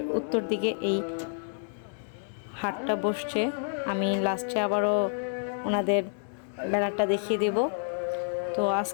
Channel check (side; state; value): right; silent; 59 dB below the other